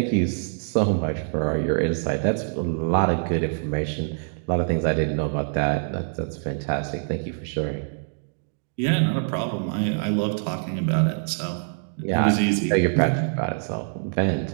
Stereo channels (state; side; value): silent; left; digital silence